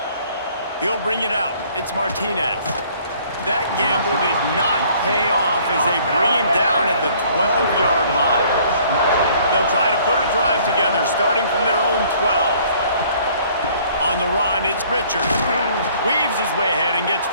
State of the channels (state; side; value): inverted; both; correlation -0.58